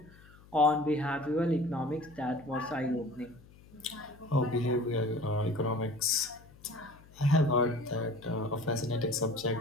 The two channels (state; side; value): noise; left; hum, 24 dB below the sound